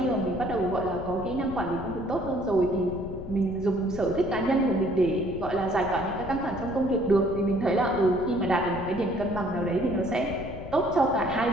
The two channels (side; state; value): left; noise; rumble, 11 dB below the sound